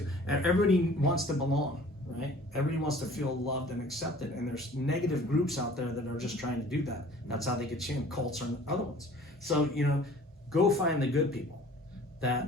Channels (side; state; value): both; normal; correlation 0.49